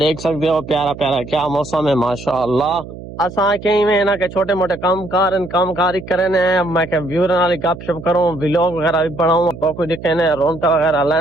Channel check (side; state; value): right; noise; hum, 14 dB below the sound